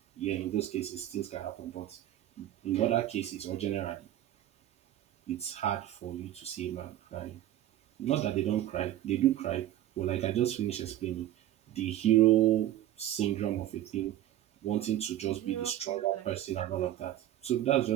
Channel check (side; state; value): left; quieter; 13.0 dB